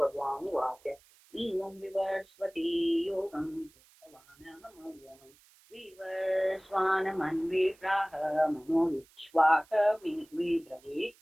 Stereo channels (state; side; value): noise; right; hiss, 29 dB below the sound